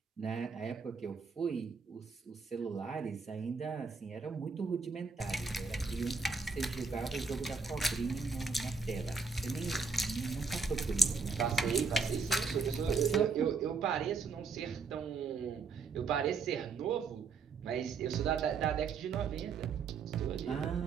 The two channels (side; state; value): left; quieter; 4.8 dB